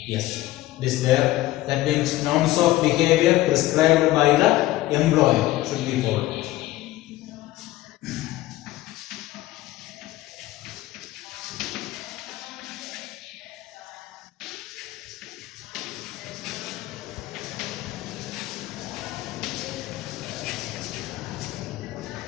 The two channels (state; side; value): quieter; right; 16.6 dB